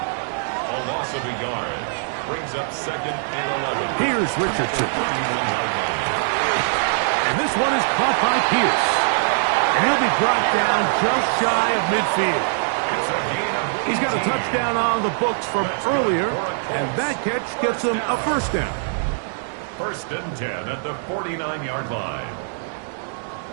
loss of a yard brings up 2nd and 11. Here's Richardson. And this one is caught by Pierce. And he'll be brought down just shy of midfield. He's got a touchdown on the books from earlier, and that catch gets him a 1st down. 1st and 10 at the 49-yard line.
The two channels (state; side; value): silent; left; digital silence